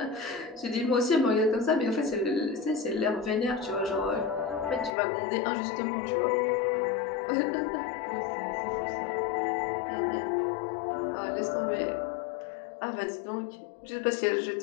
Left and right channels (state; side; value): drops out; right; at 5.0 s